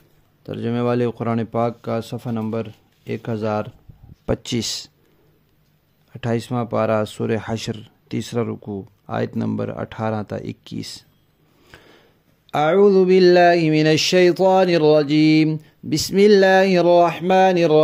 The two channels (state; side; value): identical; both; correlation 1.00